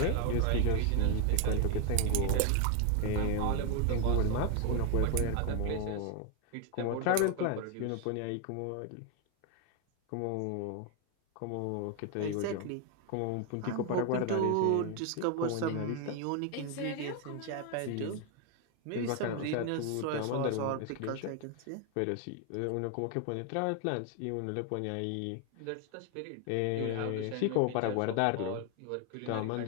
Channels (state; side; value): different; both; correlation 0.01